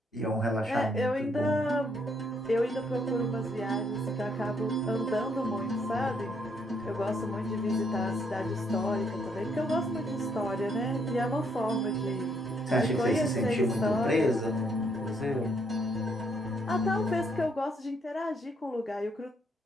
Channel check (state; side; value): normal; both; correlation 0.71